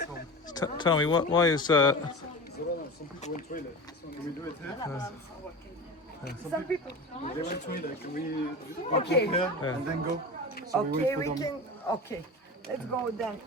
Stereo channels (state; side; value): normal; both; correlation 0.30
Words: tell me why is Zorana, some people went toilet. Can we do it here? Some people. They went toilet. Can we Okay. here and then go? So Okay, wait we for them. can. Okay, let's go then